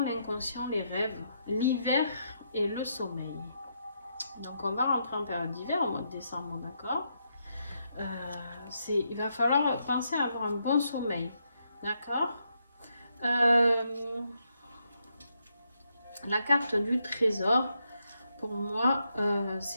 l'inconscient, les rêves, l'hiver et le sommeil. Donc on va rentrer en période d'hiver au mois de décembre, d'accord. Il va falloir penser à avoir un bon sommeil, d'accord. La carte du trésor, pour moi,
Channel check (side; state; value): both; inverted; correlation -0.79